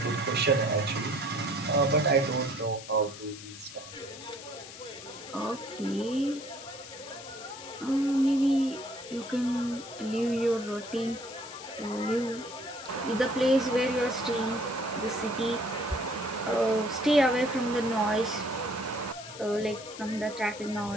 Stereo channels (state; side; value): noise; left; hiss, 14 dB below the sound